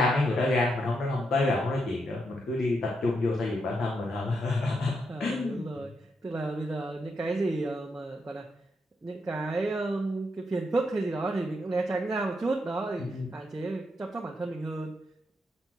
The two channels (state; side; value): normal; both; correlation 0.81